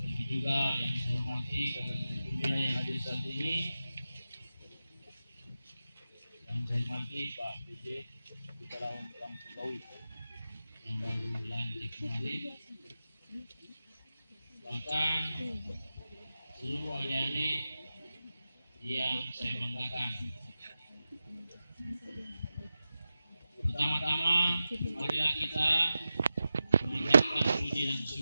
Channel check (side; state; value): both; inverted; correlation -0.93